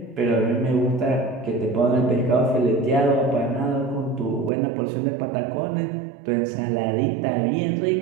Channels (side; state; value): left; drops out; at 4.5 s